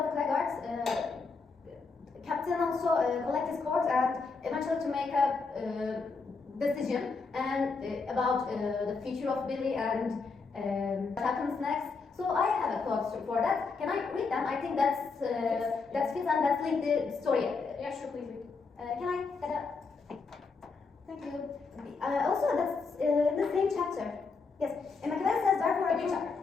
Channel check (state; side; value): quieter; right; 4.5 dB